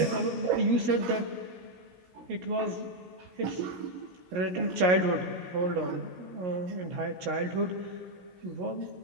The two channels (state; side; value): late; left; 17 ms